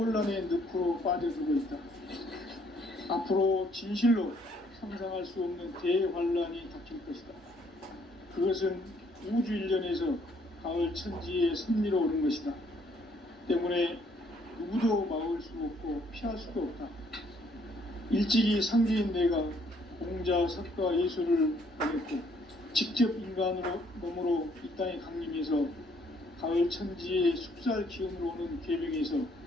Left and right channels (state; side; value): normal; both; correlation 0.66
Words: 늪으로 빠져들고 있다. 앞으로 진실로 상상할 수 없는 대환란이 닥칠 것이다. 그것은 우주 일련에서 가을 천지의 섭리로 오는 것이다. 때문에 누구도 막을 수 없고 피할 수도 없다. 일찍이 상제인 내가 공자, 석가, 예수를 보냈고 직접 인간으로 몸으로 이 땅에 강림해서 가을 천지의 숙살 기운으로 오는 계명에서